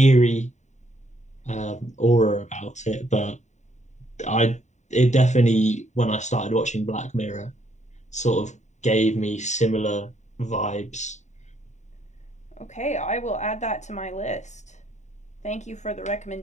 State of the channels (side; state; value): right; late; 0.34 ms